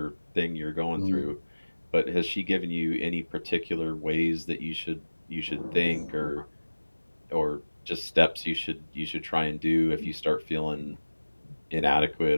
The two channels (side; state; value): both; inverted; correlation -1.00